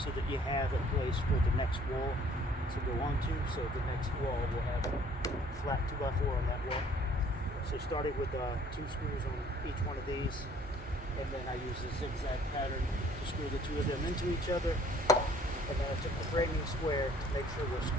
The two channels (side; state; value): both; normal; correlation 0.58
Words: that you have a place for the next wall to go onto. So the next wall will have a flat 2x4 on that wall. So started with two screws on each one of these, and then I use a zigzag pattern to screw the two of them into each other. And then I took the framing square to make sure they're